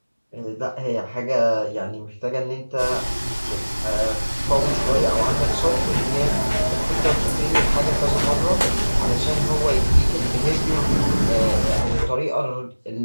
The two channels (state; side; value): inverted; both; correlation -1.00